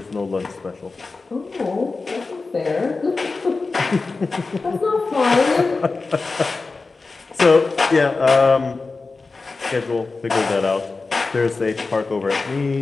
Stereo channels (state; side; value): quieter; right; 3.9 dB